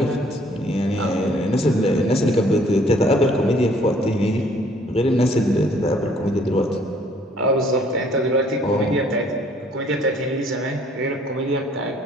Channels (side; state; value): both; normal; correlation 0.61